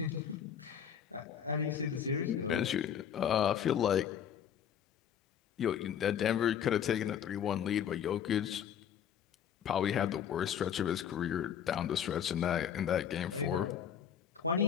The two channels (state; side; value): quieter; right; 8.7 dB